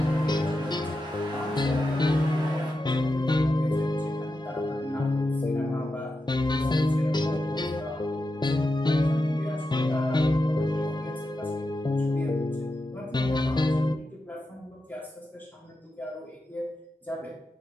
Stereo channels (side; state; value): both; normal; correlation 0.89